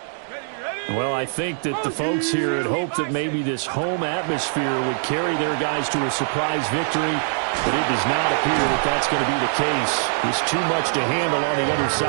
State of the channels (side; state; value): left; silent; digital silence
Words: Well, I think that the folks here had hoped that maybe this home atmosphere would carry their guys to a surprise victory, but it does not appear that that's going to be the case. There's too much to handle on the other